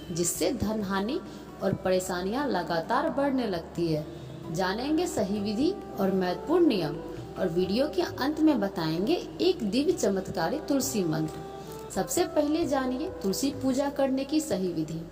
जिससे धन हानि और परेशानियां लगातार बढ़ने लगती है। जानेंगे सही विधि और महत्वपूर्ण नियम, और वीडियो के अंत में बताएंगे एक दिव्य चमत्कारी तुलसी मंत्र। सबसे पहले जानिए तुलसी पूजा करने की सही विधि।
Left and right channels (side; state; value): both; identical; correlation 1.00